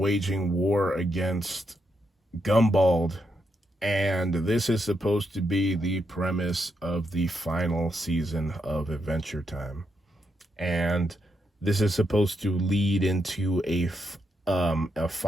war against Gumbald, and this is supposed to be the premise of the final season of Adventure Time. And this is supposed to lead into a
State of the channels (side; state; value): both; normal; correlation 0.81